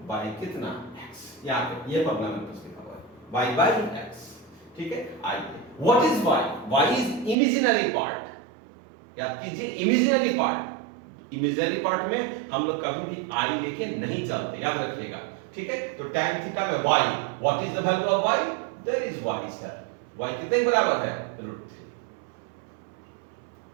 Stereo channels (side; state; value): left; drops out; at 7.4 s